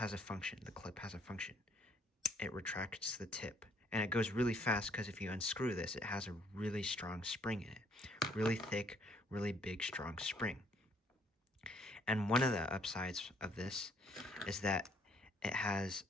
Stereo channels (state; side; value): normal; both; correlation 0.64